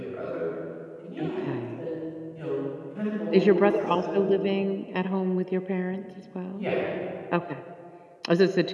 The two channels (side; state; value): both; identical; correlation 1.00